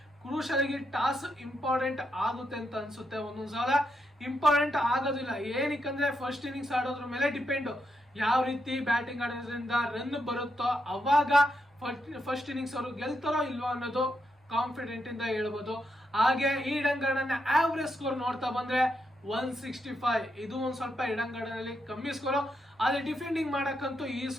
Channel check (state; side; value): normal; both; correlation 0.82